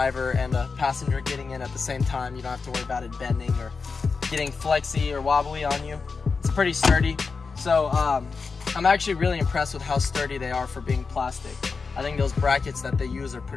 and a passenger getting in at the same time, you don't have to worry about it bending or getting flexy or wobbly on you. It's pretty sturdy. So I'm actually really impressed with how sturdy they are for being plastic. I think those brackets that they use are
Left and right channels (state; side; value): quieter; right; 4.8 dB